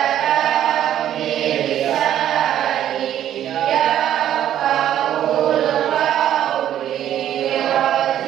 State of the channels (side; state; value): left; quieter; 11.2 dB